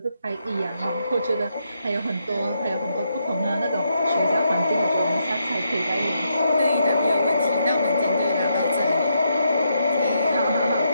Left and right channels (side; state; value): both; inverted; correlation -0.79